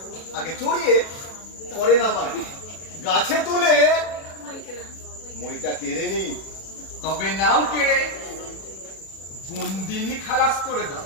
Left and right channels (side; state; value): right; late; 37 ms